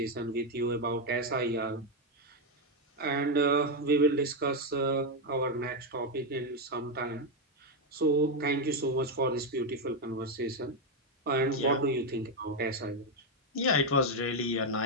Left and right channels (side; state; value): both; normal; correlation 0.04